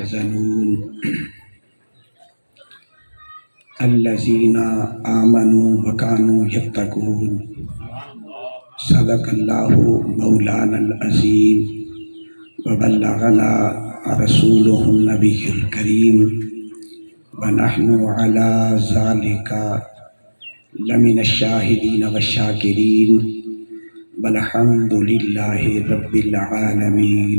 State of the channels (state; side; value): inverted; both; correlation -1.00